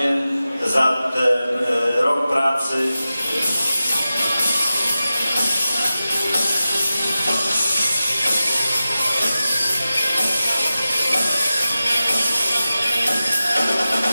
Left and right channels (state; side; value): inverted; both; correlation -0.94